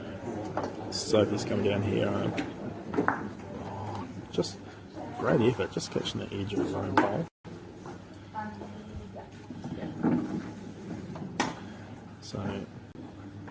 Sophie's coming down here. Just great effort, just catching the edge of his own bowl. So,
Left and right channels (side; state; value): both; identical; correlation 1.00